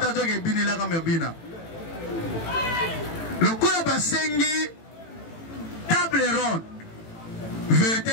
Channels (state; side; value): late; right; 18 ms